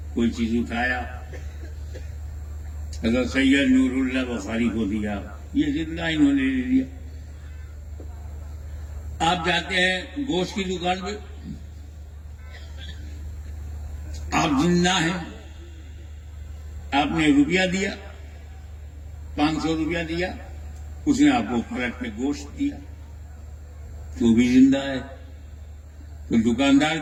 کوئی چیز اٹھایا, حضرت سید نور اللہ بخاری کو دیا, یہ زندہ انہوں نے لے لیا. آپ جاتے ہیں گوشت کی دکان پہ, آپ زندہ ہیں, آپ نے روپیہ دیا, 500 روپیہ دیا, اس نے آپ کو فلٹ میں گوشت دیا, تو بھی زندہ ہے. تو دکاندار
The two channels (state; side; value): identical; both; correlation 1.00